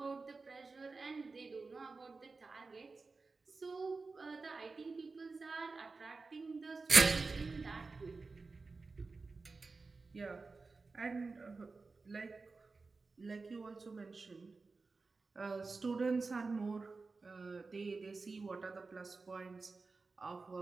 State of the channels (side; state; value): left; quieter; 4.0 dB